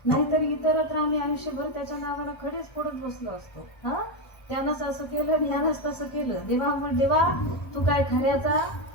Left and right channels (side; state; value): right; late; 1.3 ms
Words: नाहीतर इतरत्र आम्ही आयुष्यभर त्याच्या नावाला खडेच पडत बसलो असतो. हा, त्यानंच असं केलं, यानंच तसं केलं, देवा तू काय खऱ्याचा